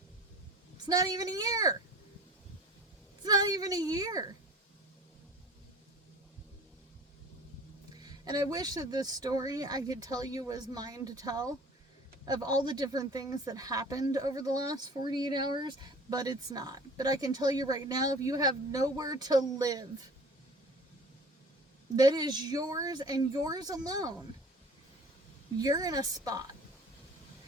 It's not even a year. It's not even a year. And I wish that this story I could tell you was mine to tell. of all the different things that happened over the last 48 hours, but it's not. But I can tell you right now, if you have nowhere to live that is yours and yours alone, you're in a spot.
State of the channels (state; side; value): normal; both; correlation 0.45